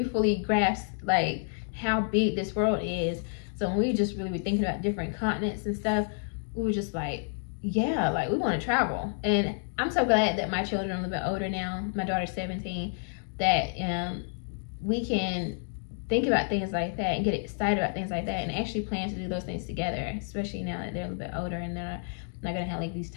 fully grasp like how big this world is. So when we just really were thinking about different continents and stuff, we were just like, yeah, like we want to travel. And I'm so glad that my children are a little bit older now. My daughter's 17, that we can think about things like that and get excited about things like that and actually plan to do those things together, especially now that they're a little bit older and they're not gonna have like these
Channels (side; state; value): right; silent; 58 dB below the other